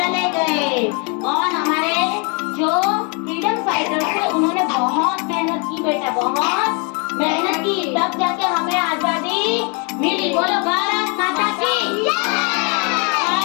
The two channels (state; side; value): quieter; right; 34.4 dB